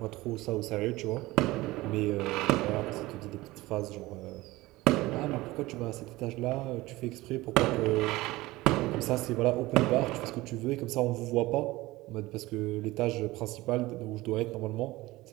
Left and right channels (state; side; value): quieter; left; 19.3 dB